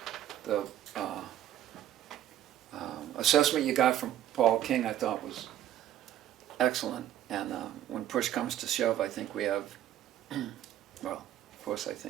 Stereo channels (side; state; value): left; quieter; 11.8 dB